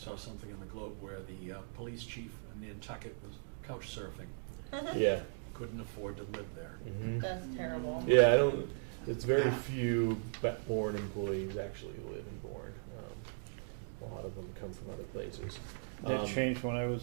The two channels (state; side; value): silent; left; digital silence